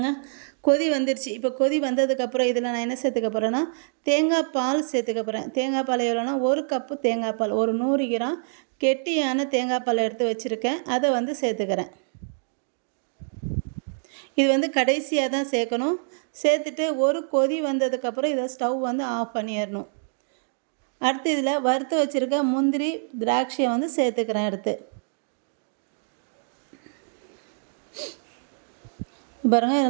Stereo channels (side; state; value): left; silent; digital silence